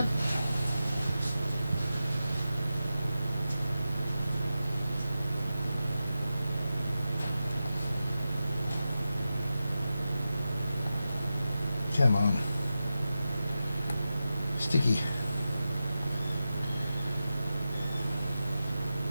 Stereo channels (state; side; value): inverted; both; correlation -0.92